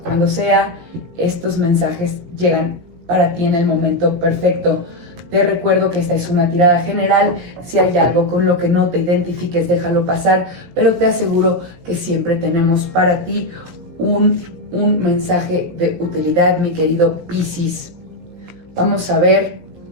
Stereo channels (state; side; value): late; left; 17 ms